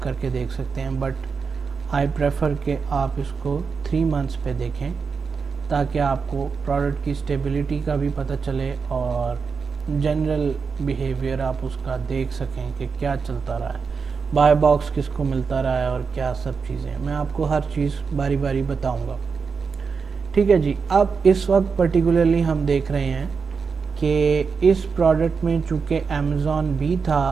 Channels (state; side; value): quieter; left; 5.4 dB